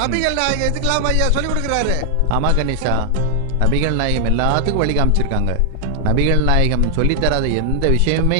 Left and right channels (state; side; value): different; both; correlation 0.00